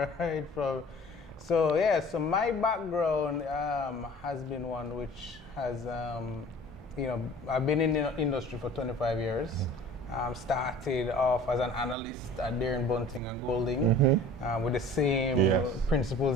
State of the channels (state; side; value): normal; both; correlation 0.46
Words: Right. So my background has been one which has, I've been in the industry for 25 years. Started off as an analyst at Deere & Bunting and Golding with the same principles